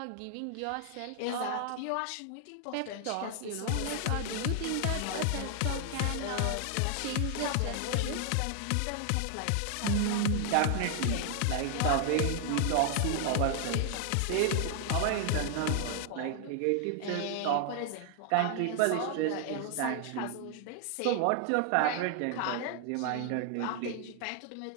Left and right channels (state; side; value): different; both; correlation 0.00